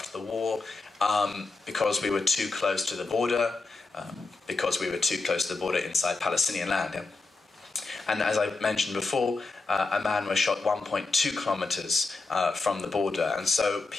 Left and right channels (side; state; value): right; quieter; 3.8 dB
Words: the war, because we were too close to the border, inside Palestinian land. Yeah? And as I mentioned before, a man was shot 1.2 kilometers from the border. And so